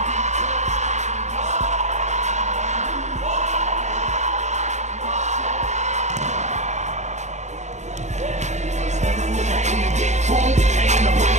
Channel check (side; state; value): left; late; 0.34 ms